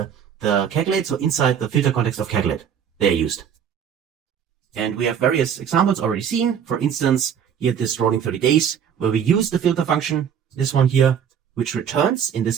calculate, so inside the filter context of calculate, they are used. And we have various examples already seen. For instance, here this rolling 30 days, where we use the filter function, this one here, which returns, in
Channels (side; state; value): left; quieter; 8.2 dB